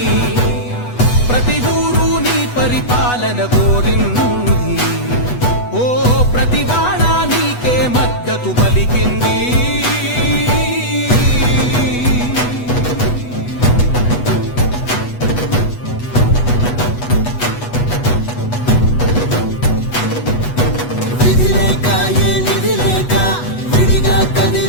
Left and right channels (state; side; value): late; right; 8.2 ms